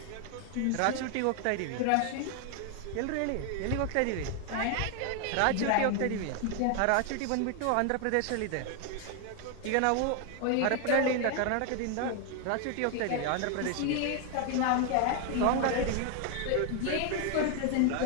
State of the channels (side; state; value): both; different; correlation 0.01